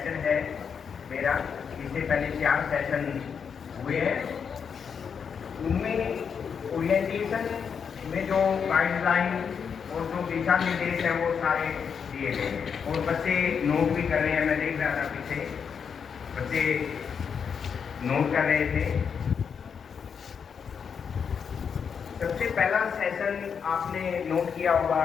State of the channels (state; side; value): quieter; right; 6.7 dB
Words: है मेरा। इससे पहले 4 सेशन हुए हैं। उनमें ओरिएंटेशन में जो गाइडलाइन और जो दिशा निर्देश है वो सारे दिए गए और बच्चे नोट भी कर रहे हैं। मैं देख रहा था पीछे बच्चे नोट कर रहे थे। सबसे पहला सेशन आपने नोट किया होगा